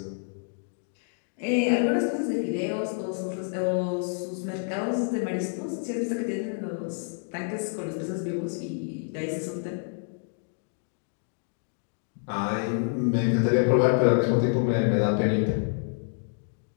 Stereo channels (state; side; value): silent; right; 59 dB below the other